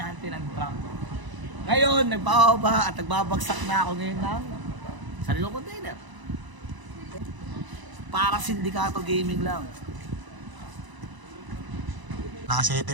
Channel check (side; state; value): left; late; 1.0 ms